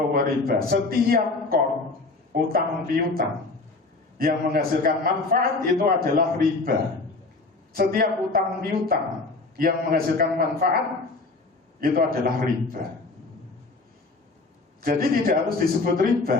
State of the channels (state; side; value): quieter; right; 3.5 dB